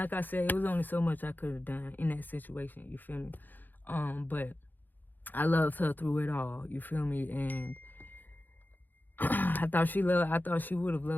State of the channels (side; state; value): right; late; 0.087 ms